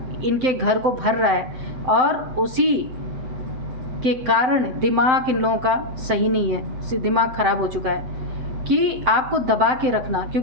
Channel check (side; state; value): left; late; 7.8 ms